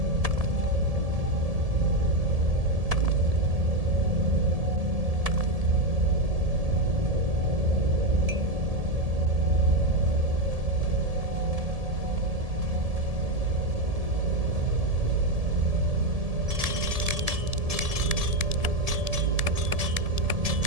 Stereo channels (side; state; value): left; late; 1.7 ms